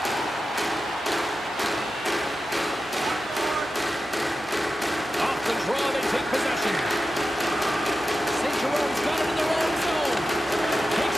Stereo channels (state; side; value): normal; both; correlation 0.92